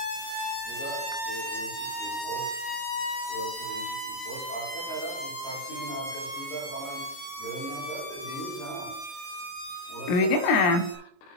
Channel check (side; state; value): right; late; 22 ms